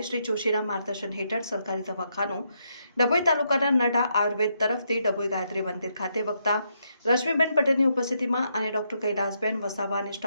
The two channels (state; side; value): inverted; both; correlation -0.78